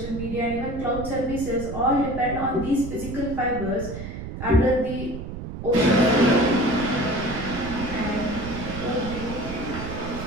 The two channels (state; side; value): noise; right; rumble, 8 dB below the sound